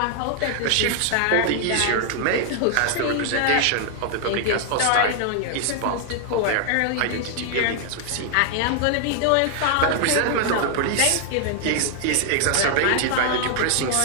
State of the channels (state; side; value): different; both; correlation 0.00